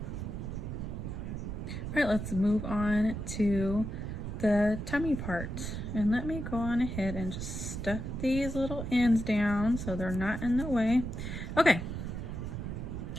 All right, let's move on to the tummy part. And let me go on ahead and just stuff these little ends down so they're not in the way. Okay,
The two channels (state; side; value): noise; right; rumble, 5 dB below the sound